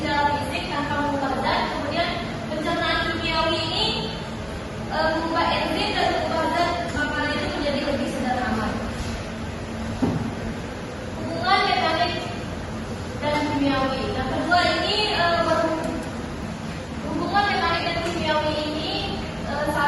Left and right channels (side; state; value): both; identical; correlation 1.00